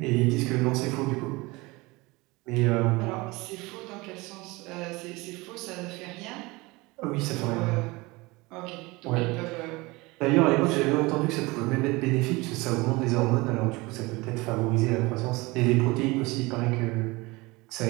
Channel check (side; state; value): left; quieter; 23.2 dB